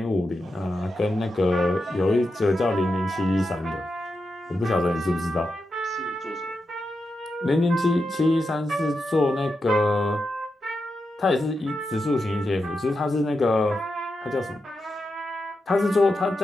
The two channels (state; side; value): normal; both; correlation 0.88